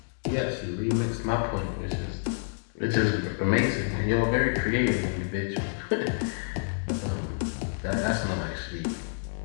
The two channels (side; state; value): right; silent; digital silence